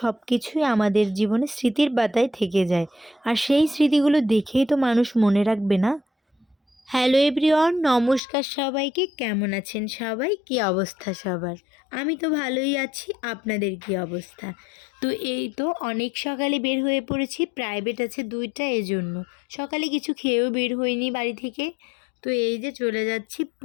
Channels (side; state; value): right; drops out; at 8.2 s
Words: কিছুই আমাদের জীবনে স্মৃতির পাতায় থেকে যায়। আর সেই স্মৃতিগুলো দেখেই তো মানুষ মনে রাখবে, না? হ্যালো এভরিওয়ান, নমস্কার সবাইকে। কেমন আছেন সবাই? কী অবস্থা সবার? আমি তো ভালোই আছি। আপনাদের কী অবস্থা? তো এই তো অনেক সকালে বের হয়ে পড়েছি, প্রাইভেট আছে 2টা, এজন্য সকালে কিছু খেয়েও বের হইনি বাড়ি থেকে। তো এই যে চলে যাচ্ছি